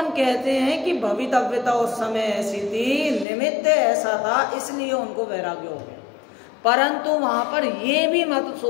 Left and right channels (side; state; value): right; drops out; at 3.2 s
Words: कहते हैं कि भवितव्यता उस समय ऐसी थी, निमित्त ऐसा था, इसलिए उनको वैराग्य हो गया। परंतु वहां पर ये भी मत